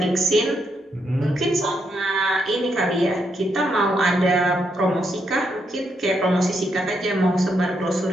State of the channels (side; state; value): both; normal; correlation 0.79